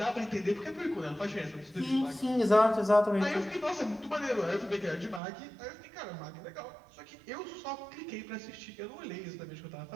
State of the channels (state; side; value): drops out; left; at 5.2 s